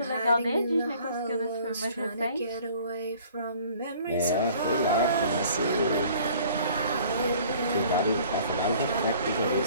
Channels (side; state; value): both; inverted; correlation -0.53